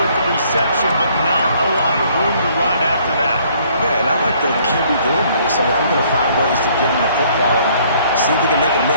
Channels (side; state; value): both; inverted; correlation -0.62